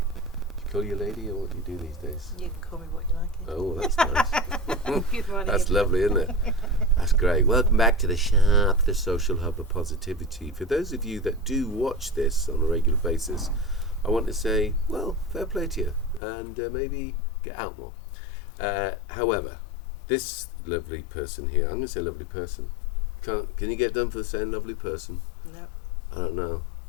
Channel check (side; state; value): right; drops out; at 16.2 s